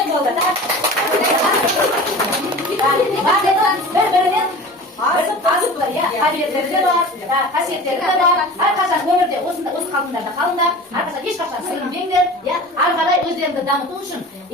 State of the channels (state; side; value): normal; both; correlation 0.37